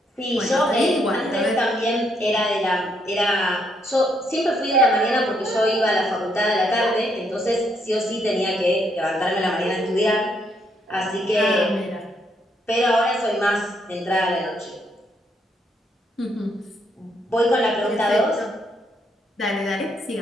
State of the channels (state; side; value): normal; both; correlation 0.74